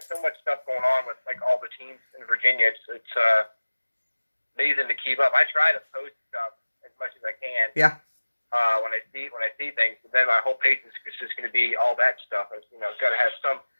much stuff going on with, like, all the teams in Virginia. It's amazing to keep up. I try to post stuff as much as I can. Yeah. When I see things, but then my whole page is just going to be all that stuff. It's, it's got to have some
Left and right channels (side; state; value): both; inverted; correlation -1.00